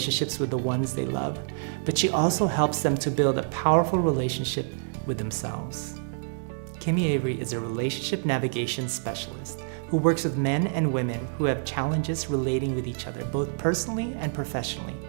with the ones they love, but she also helps them to build a powerful relationship with themselves. Kimi Avary is a relationship navigation specialist who works with men and women who have challenges relating with each other, both personally and professionally.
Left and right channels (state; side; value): silent; left; digital silence